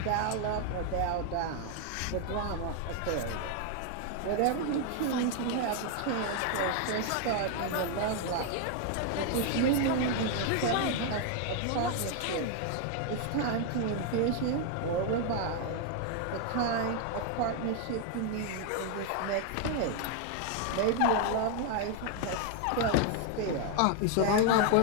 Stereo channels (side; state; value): both; different; correlation 0.00